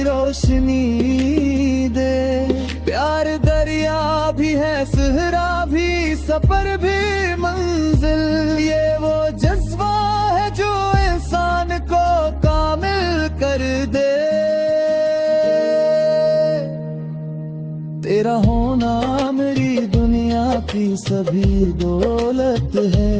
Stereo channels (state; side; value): identical; both; correlation 1.00